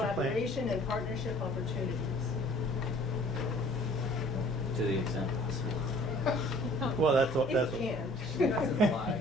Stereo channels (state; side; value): normal; both; correlation 0.53